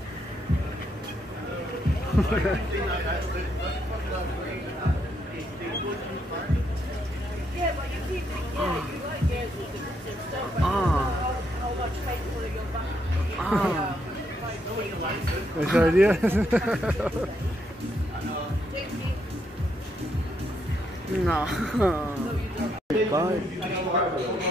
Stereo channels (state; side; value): normal; both; correlation 0.76